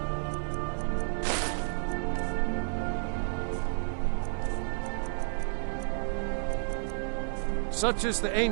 Such is the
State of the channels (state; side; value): silent; left; 57 dB below the other